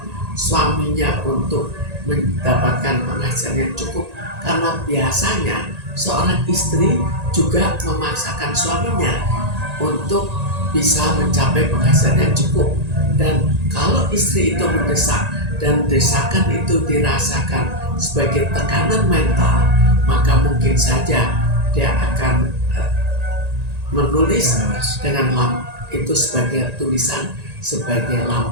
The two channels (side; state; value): left; late; 1.9 ms